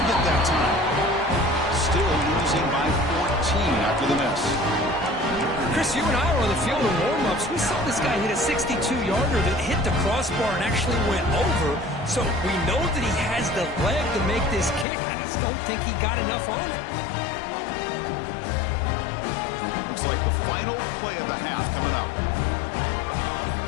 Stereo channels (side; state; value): right; drops out; at 14.9 s